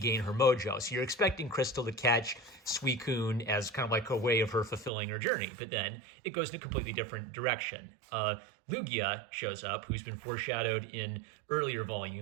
her mojo. So you're expecting Crystal to catch Suicune as kind of like a way of her fulfilling her journey, but then it goes in a completely different direction. Lugia shows up, who's been foreshadowed in earlier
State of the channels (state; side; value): drops out; left; at 4.9 s